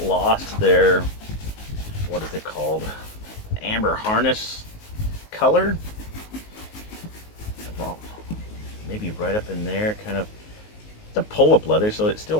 lost their, what is it called, amber harness color. Well, maybe right up in there, kind of. It's a pull-up leather, so it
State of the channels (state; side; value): late; right; 19 ms